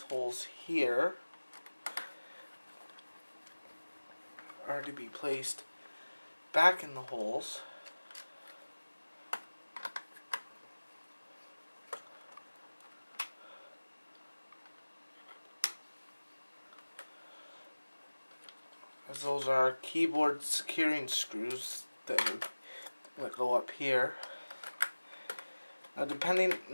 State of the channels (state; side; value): inverted; both; correlation -1.00